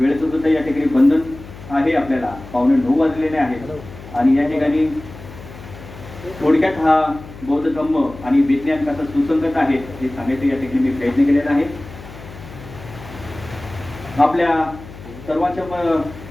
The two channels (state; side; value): noise; left; hum, 16 dB below the sound